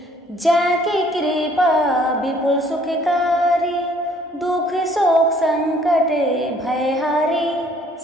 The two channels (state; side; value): normal; both; correlation 0.60